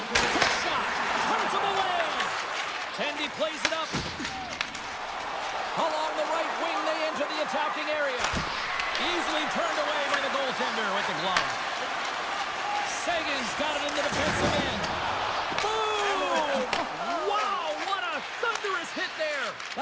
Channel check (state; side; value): identical; both; correlation 1.00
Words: Quick shot. Turns him away. Tendy plays it up. Along the right wing, they enter the attacking area. Easily turned away by the goaltender with the glove. Sagan's got it in the defensive end. Boom! Wow, what a thunderous hit there.